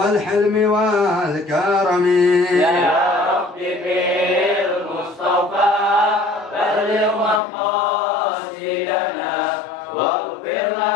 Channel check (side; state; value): right; drops out; at 7.4 s